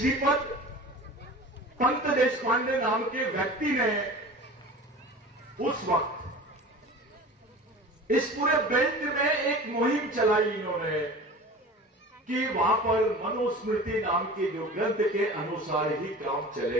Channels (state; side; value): normal; both; correlation 0.37